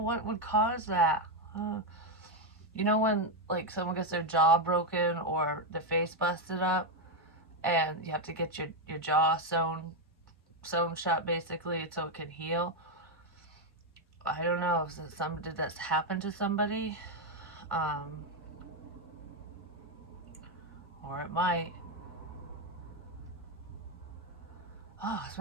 what would cause that. You know when, like, someone gets their jaw broken or their face busted up and you have to get your jaw sewn shut basically so it can heal? I don't know if did this happen to somebody? Or it might. Oh, it's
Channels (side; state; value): both; normal; correlation 0.04